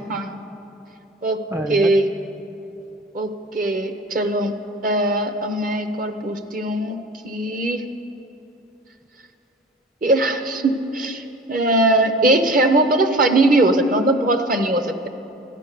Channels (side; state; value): both; normal; correlation 0.40